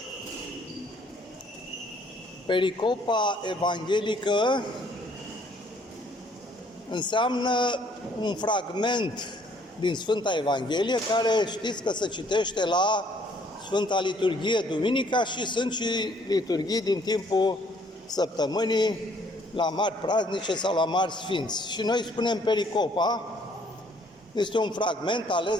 pericopa evanghelică înseamnă un fragment din Sfânta Evanghelie care știți că se citește la Sfânta Liturghie duminica și sunt și liturghii din timpul săptămânii la mari praznice sau la mari sfinți. Și noi spunem pericopa, este un fragment ales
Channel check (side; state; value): both; normal; correlation 0.63